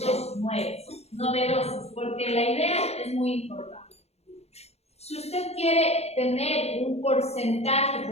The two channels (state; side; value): late; right; 0.31 ms